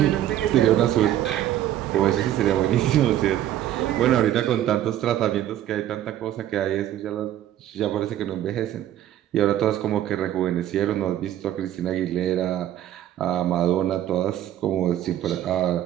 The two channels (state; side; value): quieter; left; 12.2 dB